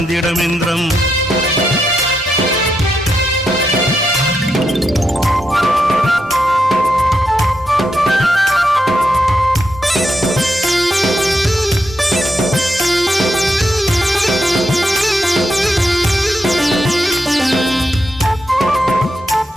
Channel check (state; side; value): normal; both; correlation 0.83